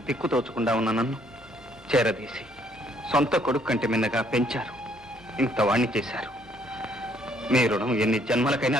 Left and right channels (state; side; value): normal; both; correlation 0.66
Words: దిక్కు తోచకుండా ఉన్న నన్ను చేరదీసి సొంత కొడుకు కంటే మిన్నగా పెంచారు. ఇంత వాణ్ణి చేశారు. మీ రుణం ఎన్ని జన్మలకైనా